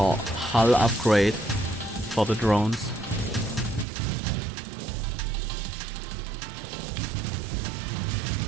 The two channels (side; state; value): left; drops out; at 3.9 s